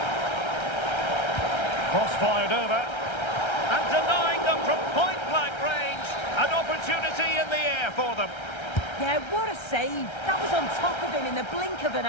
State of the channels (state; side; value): late; right; 1.3 ms